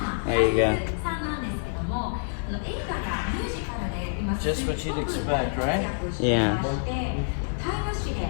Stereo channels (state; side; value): silent; right; 60 dB below the other